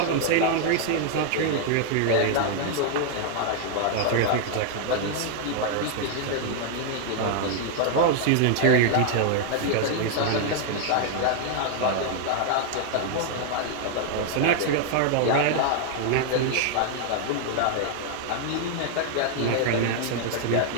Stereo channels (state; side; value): different; both; correlation 0.00